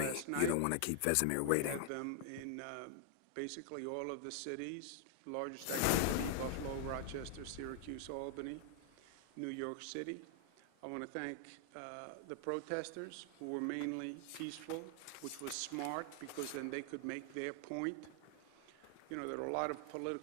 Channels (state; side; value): different; both; correlation 0.00